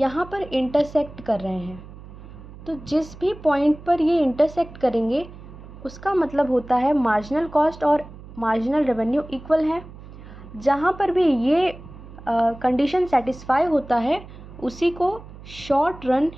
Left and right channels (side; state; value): right; noise; hum, 17 dB below the sound